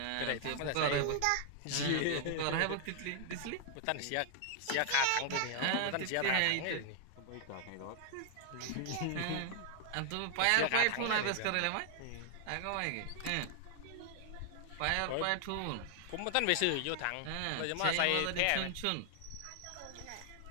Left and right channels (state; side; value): different; both; correlation 0.00